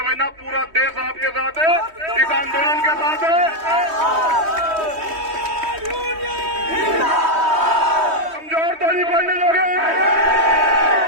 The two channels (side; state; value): left; late; 3.2 ms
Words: पूरा देश आपके साथ है, इस आंदोलन के साथ है। कमजोर तो नहीं पड़ने दोगे,